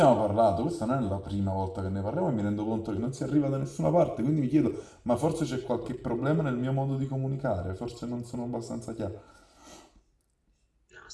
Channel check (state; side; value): identical; both; correlation 1.00